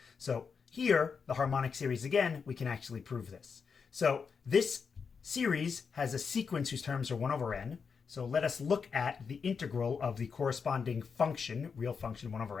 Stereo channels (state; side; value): quieter; right; 5.8 dB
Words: So here, the harmonic series again, we can actually prove this. So this series has a sequence whose terms are 1 over n. So let us look at the integral of the corresponding function, real function 1